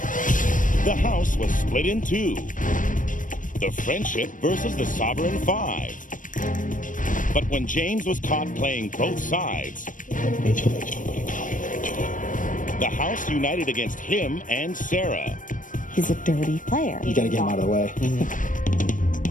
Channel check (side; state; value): right; late; 0.38 ms